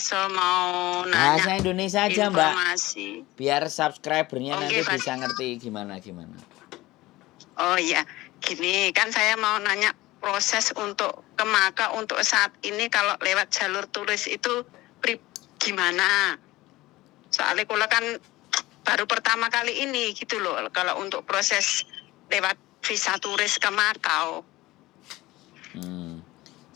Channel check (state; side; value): quieter; right; 18.5 dB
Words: mau nanya Bahasa Indonesia aja, Mbak. informasi. Biar subscribernya Oh nanti nggih bisa ngerti gimana. Oh iya, gini kan saya mau nanya proses untuk ke Maka untuk saat ini kalau lewat jalur turis itu gimana? Soalnya kula kan baru pertama kali ini gitu loh kalau untuk proses lewat visa turis ke Makau.